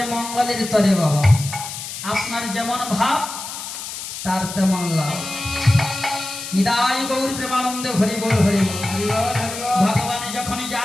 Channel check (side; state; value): left; noise; hiss, 8 dB below the sound